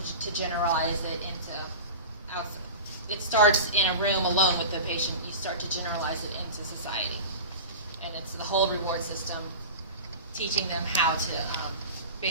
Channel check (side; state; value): both; inverted; correlation -0.31